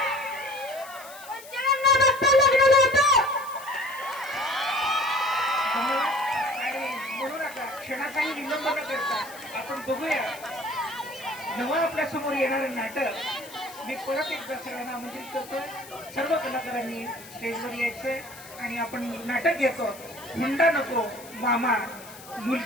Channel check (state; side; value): noise; left; hiss, 18 dB below the sound